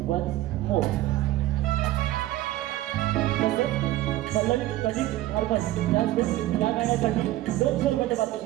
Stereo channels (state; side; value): quieter; left; 15.6 dB